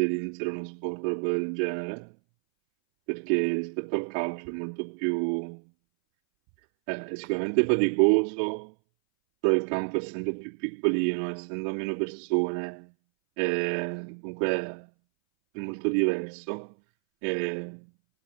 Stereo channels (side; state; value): left; silent; 59 dB below the other